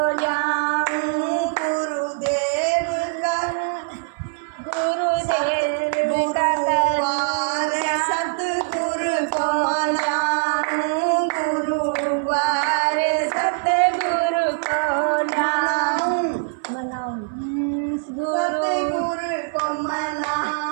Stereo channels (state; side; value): silent; left; 59 dB below the other